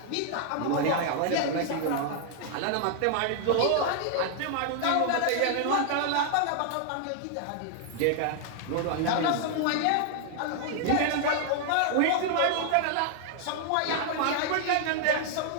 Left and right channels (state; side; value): different; both; correlation 0.00